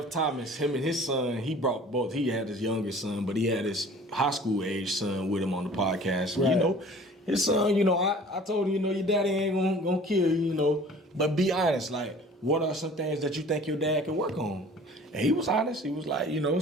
Thomas, him and his son, he brought both. He had his younger son, but he had his high school age son with him on the podcast. Right. You know, his son, you know, I told him, you know, your daddy ain't gonna kill you, you know, but be honest, like, what are some things that you think your dad can work on? And he was honest. He was like, you know,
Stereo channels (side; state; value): both; normal; correlation 0.47